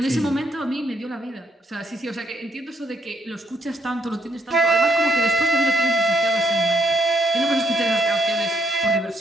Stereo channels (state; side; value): normal; both; correlation 0.72